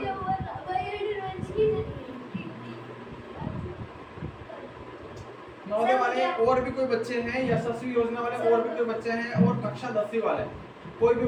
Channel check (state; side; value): identical; both; correlation 1.00